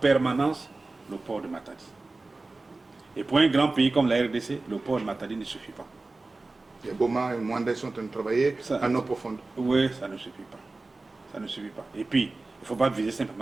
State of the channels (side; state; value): left; quieter; 3.3 dB